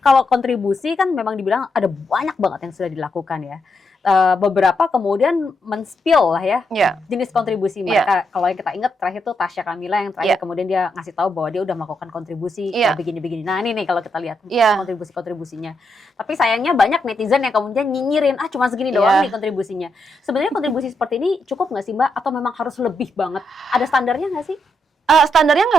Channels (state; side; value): normal; both; correlation 0.81